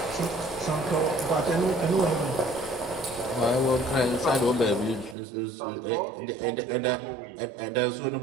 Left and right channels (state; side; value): drops out; left; at 5.2 s